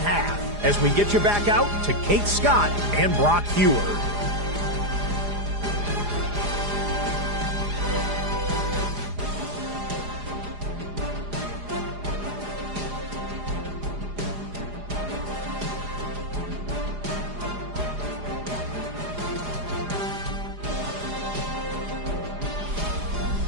half. As we get you back out to Kate Scott and Brock Heward.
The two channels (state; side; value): late; left; 4.9 ms